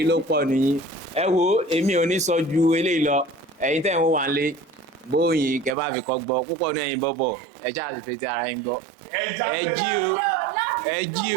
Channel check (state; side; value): drops out; left; at 5.8 s